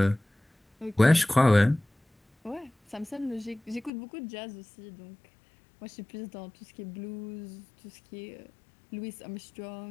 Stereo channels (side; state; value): right; drops out; at 3.9 s